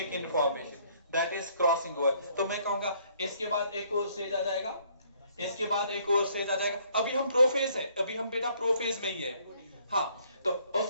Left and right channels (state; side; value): inverted; both; correlation -0.64